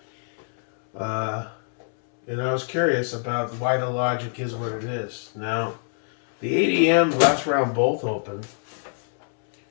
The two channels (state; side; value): silent; right; 62 dB below the other